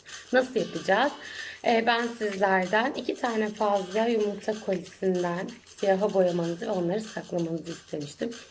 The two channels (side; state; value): both; identical; correlation 1.00